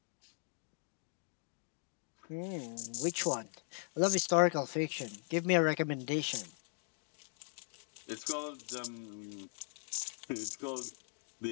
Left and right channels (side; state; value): right; silent; 52 dB below the other